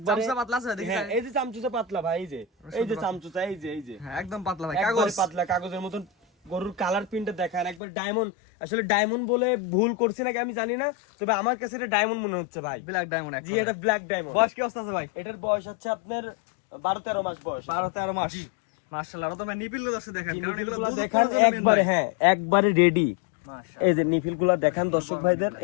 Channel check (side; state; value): right; drops out; at 7.8 s